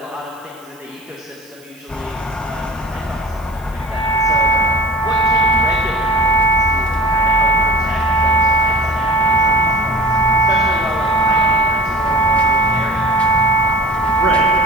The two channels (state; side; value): noise; right; hiss, 27 dB below the sound